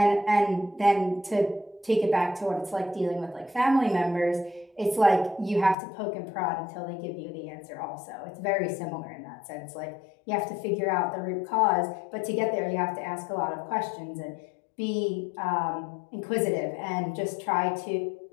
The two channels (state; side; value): drops out; right; at 5.8 s